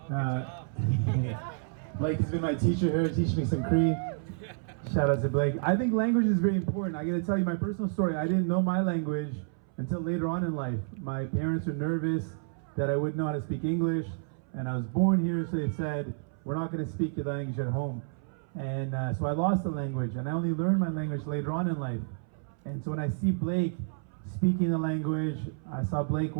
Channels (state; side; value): silent; left; 58 dB below the other